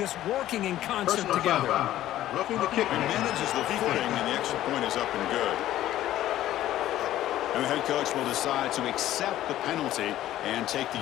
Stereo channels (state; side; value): quieter; right; 13.5 dB